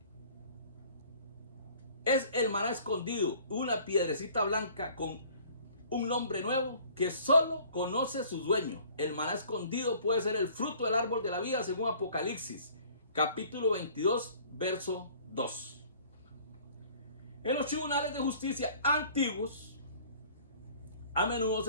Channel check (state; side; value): inverted; both; correlation -0.52